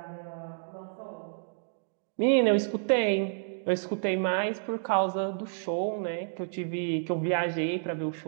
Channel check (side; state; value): left; silent; digital silence